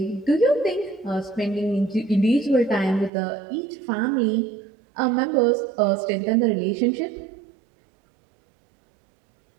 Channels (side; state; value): left; drops out; at 3.1 s